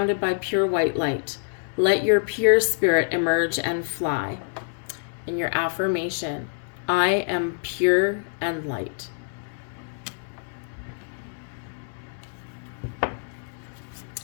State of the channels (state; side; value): silent; right; digital silence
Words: by pure white light. Let your pure spirit emerge and fly. And your affirmation, I am pure and light.